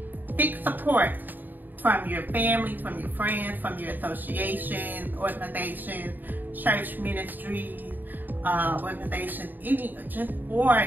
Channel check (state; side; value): late; left; 0.089 ms